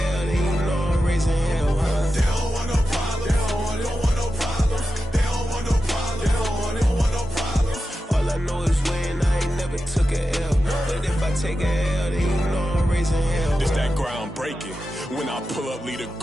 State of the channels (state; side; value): normal; both; correlation 0.91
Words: then you know I'm raising hell, huh? They don't want no problems, they don't want no problems. They don't want no problems, they don't want no problems. All I know is win, I ain't never took a L. But if I take a L, then you know I'm raising hell. It's that ground breaking. When I pull up, leave the